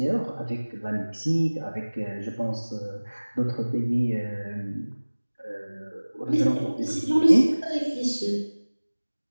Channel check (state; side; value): inverted; both; correlation -1.00